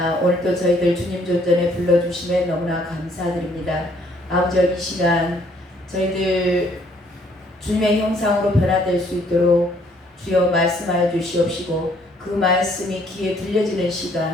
오늘도 저희들 주님 존전에 불러주심에 너무나 감사드립니다. 아버지, 이 시간 저희들 주님의 형상으로 변화될 수 있도록 주여 말씀하여 주시옵시고, 그 말씀이 귀에 들려지는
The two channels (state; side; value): normal; both; correlation 0.64